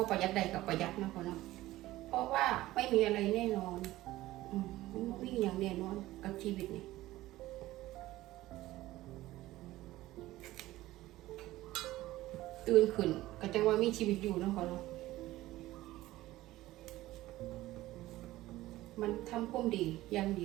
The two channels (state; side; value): quieter; left; 16.6 dB